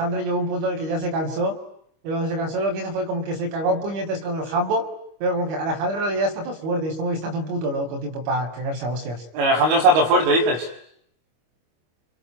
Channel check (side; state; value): left; late; 25 ms